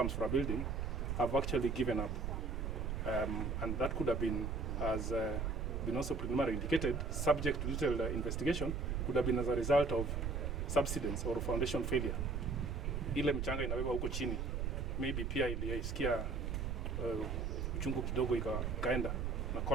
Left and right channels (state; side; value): noise; right; rumble, 1 dB below the sound